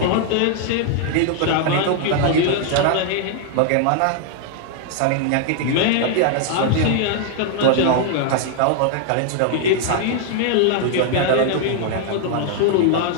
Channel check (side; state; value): both; different; correlation 0.00